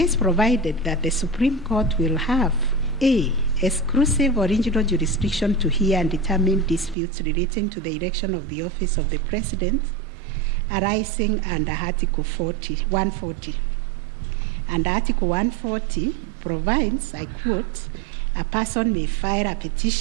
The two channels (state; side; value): drops out; left; at 7.0 s